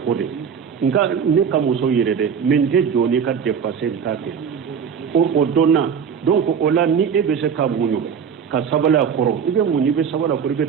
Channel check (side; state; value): left; quieter; 7.1 dB